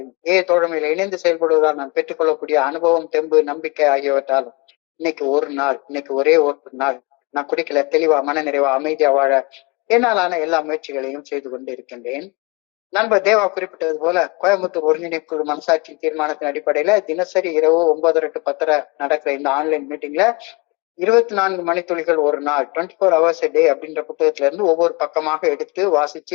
தோழமையில இணைந்து செயல்படுவதால் நான் பெற்றுக்கொள்ளக்கூடிய அனுபவம், தெம்பு, நம்பிக்கை ஆகியவற்றாலும் இன்னைக்கு ஒரே ஒரு நாள் நான் குடிக்கல, தெளிவா, மன நிறைவா, அமைதியா வாழ என்னாலான எல்லா முயற்சிகளையும் செய்து கொண்டு இருக்கின்றேன். நண்பர் தேவா குறிப்பிட்டது போல கோயம்புத்தூர் ஒருங்கிணைப்பு மனசாட்சி தீர்மானத்தின் அடிப்படையில தினசரி இரவு 9:30 to 10:30 நடக்கிற இந்த ஆன்லைன் மீட்டிங்ல 24 மணித்துளிகள் ஒரு நாள், 24 hours a day அப்படின்ற புத்தகத்துல இருந்து ஒவ்வொரு பக்கமாக எடுத்து வாசிச்சு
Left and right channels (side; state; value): right; quieter; 26.9 dB